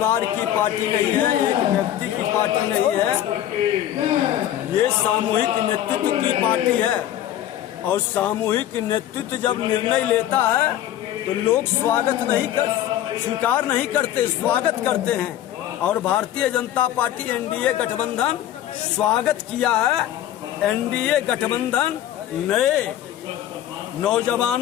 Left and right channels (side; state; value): right; quieter; 12.1 dB